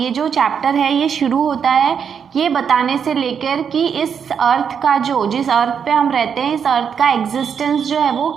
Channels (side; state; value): left; quieter; 7.2 dB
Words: जो चैप्टर है ये शुरू होता है ये बताने से लेकर कि इस अर्थ का जिस अर्थ पे हम रहते हैं इस अर्थ का एग्जिस्टेंस जो है वो